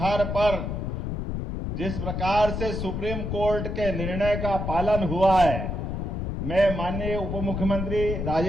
पर जिस प्रकार से सुप्रीम कोर्ट के निर्णय का पालन हुआ है, मैं माननीय उप मुख्यमंत्री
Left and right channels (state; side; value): noise; left; rumble, 3 dB below the sound